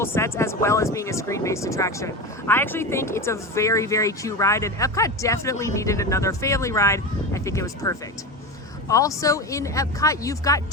sets as well as being a screen-based attraction. I actually think it's a very, very cute ride, and Epcot definitely needed another family ride. I think it was perfect. Also in Epcot, you've got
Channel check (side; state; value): both; normal; correlation 0.23